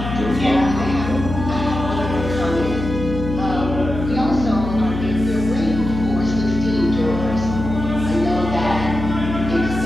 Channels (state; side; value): noise; left; hum, 6 dB below the sound